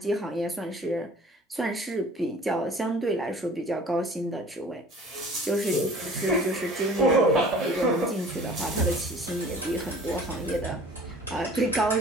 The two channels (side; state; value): both; normal; correlation 0.47